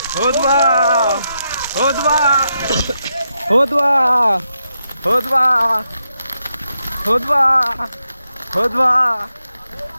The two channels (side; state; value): both; inverted; correlation -0.83